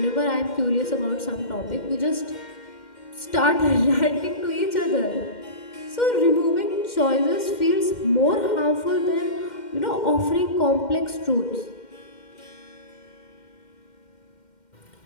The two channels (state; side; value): late; right; 2.1 ms